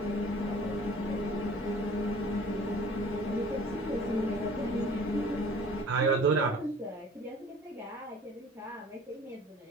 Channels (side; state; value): both; normal; correlation 0.49